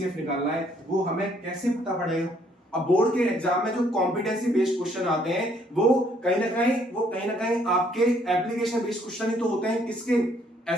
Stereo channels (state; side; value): normal; both; correlation 0.66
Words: निकालना है, वो हमें कैसे पता पड़ेगा। अब बोर्ड के एग्जाम में जो कॉम्पिटेंसी बेस्ड क्वेश्चन आते हैं वो कहीं ना कहीं आपके एप्लीकेशन बेस्ड क्वेश्चन ही तो होते हैं, किसके,